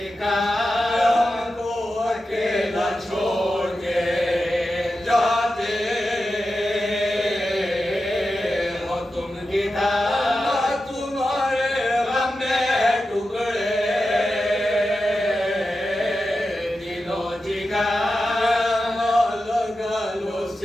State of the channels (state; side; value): normal; both; correlation 0.91